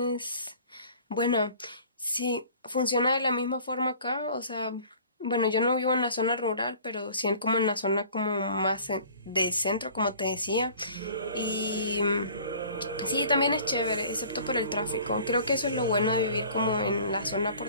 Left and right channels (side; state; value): both; inverted; correlation -0.48